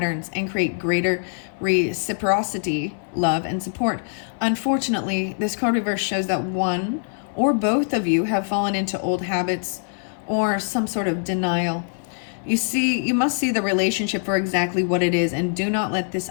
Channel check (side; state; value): right; silent; 63 dB below the other